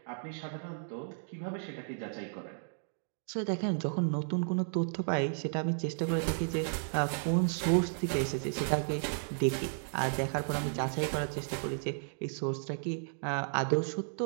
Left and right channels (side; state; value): left; silent; digital silence